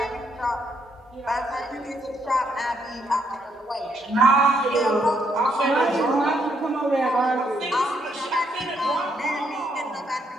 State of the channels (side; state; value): both; normal; correlation 0.74